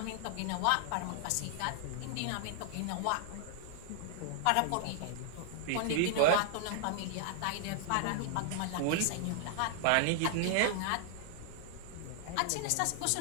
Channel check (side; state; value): both; different; correlation -0.01